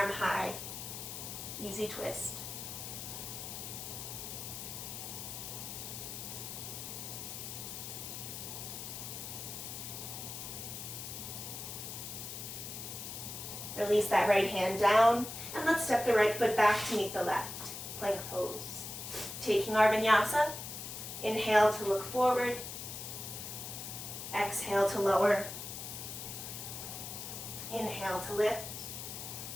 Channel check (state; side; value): noise; left; hiss, 8 dB below the sound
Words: high. Easy twist. Release that right hand down, and let's step the right foot back to meet the left. Plank pose. Taking our vinyasa, inhale to look forward, exhale to lower. Inhale to lift.